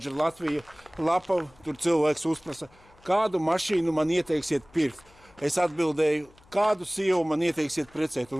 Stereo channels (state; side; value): noise; left; hum, 28 dB below the sound